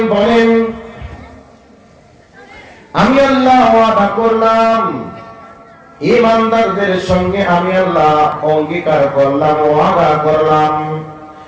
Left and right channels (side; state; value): both; identical; correlation 1.00